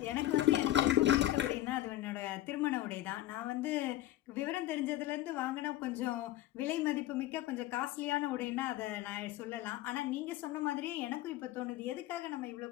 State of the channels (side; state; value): right; quieter; 14.8 dB